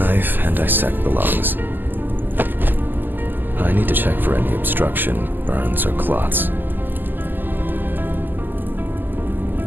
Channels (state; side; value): late; left; 0.089 ms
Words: and dissect the lungs. I need to check for any obstruction, burns, or clots.